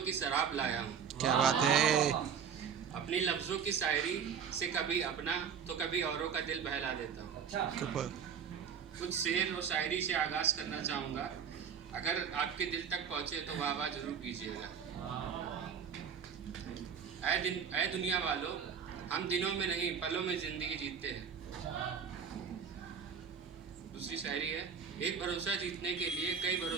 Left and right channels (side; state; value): left; quieter; 7.2 dB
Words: की शराब लाया हूँ। क्या बात है। अपनी लफ्ज़ों की शायरी से कभी अपना तो कभी औरों का दिल बहला देता हूँ। कुछ शेर और शायरी से आगाज़ करना चाहूँगा। अगर आपके दिल तक पहुँचे तो वाह वाह जरूर कीजिएगा। ऐ दुनिया वालों, हम दिनों में नहीं पलों में ज़िंदगी जीते हैं। दूसरी शायरी है, एक भरोसा जीतने के लिए कई